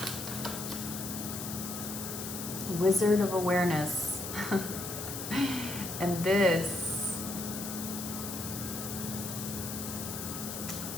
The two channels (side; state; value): left; noise; hiss, 6 dB below the sound